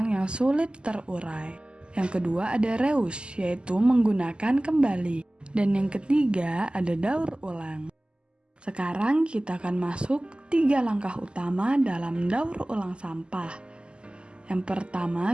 yang sulit terurai. Yang kedua ada reuse, yaitu menggunakan kembali. Dan yang ketiga ada daur ulang. Sekarang kita akan masuk 3 langkah utama dalam daur ulang sampah. Yang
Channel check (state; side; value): late; left; 0.050 ms